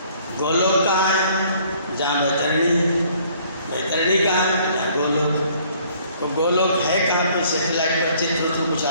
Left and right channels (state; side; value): inverted; both; correlation -0.59